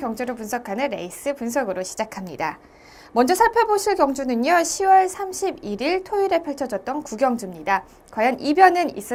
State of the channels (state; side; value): identical; both; correlation 1.00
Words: 분석하는 레이스 분석으로 시작합니다. 먼저 살펴보실 경주는요. 10월 31일 토요일에 펼쳐졌던 구경주입니다. 과연 이변은